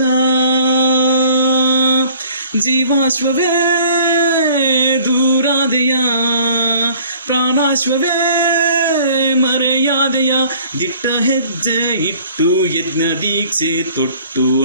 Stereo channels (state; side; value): inverted; both; correlation -0.53